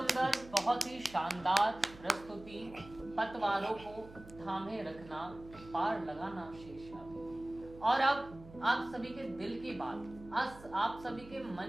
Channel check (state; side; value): noise; right; hum, 18 dB below the sound